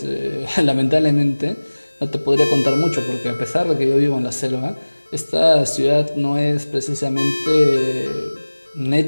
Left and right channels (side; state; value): both; inverted; correlation -1.00